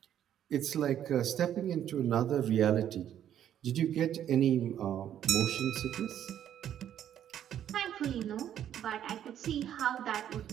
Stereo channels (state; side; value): quieter; left; 10.4 dB